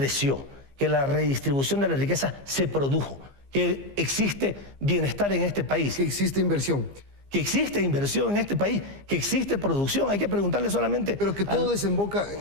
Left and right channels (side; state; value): left; late; 15 ms